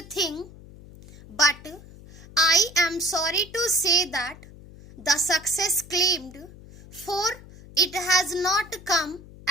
thing, but I am sorry to say that the success claimed for it has not come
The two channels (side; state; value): left; noise; hum, 19 dB below the sound